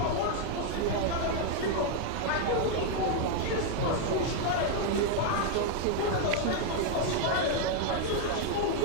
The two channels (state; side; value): different; both; correlation 0.00